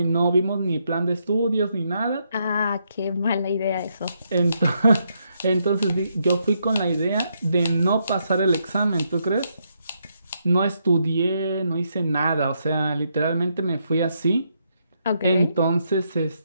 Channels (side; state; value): both; inverted; correlation -0.78